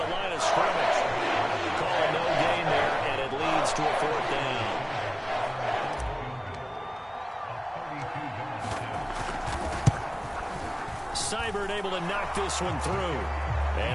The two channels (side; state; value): both; identical; correlation 1.00